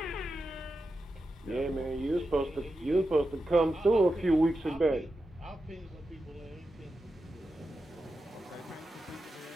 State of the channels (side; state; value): both; normal; correlation 0.90